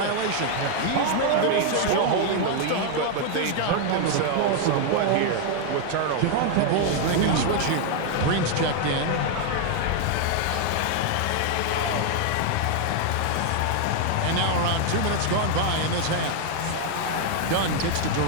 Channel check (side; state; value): both; different; correlation 0.00